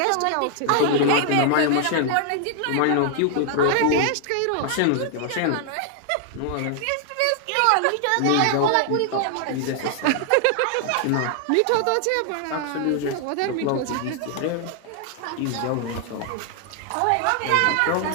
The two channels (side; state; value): both; different; correlation 0.00